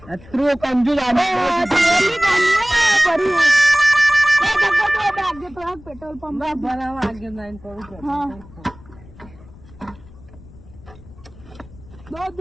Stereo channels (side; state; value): left; noise; rumble, 21 dB below the sound